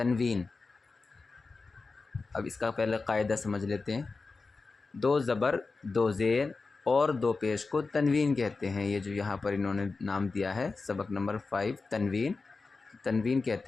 اب اس کا پہلے قاعدہ سمجھ لیتے ہیں۔ دو زبر، دو زیر اور دو پیش کو تنوین کہتے ہیں۔ یہ جو یہاں پر انہوں نے نام دیا ہے سبق نمبر 5 تنوین، تنوین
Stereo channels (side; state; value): right; quieter; 4.1 dB